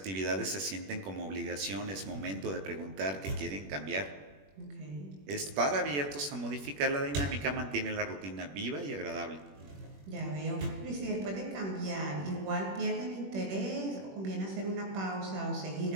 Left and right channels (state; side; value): late; left; 21 ms